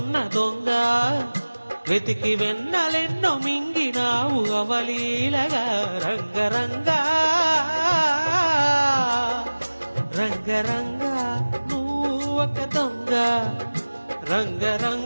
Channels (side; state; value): both; inverted; correlation -1.00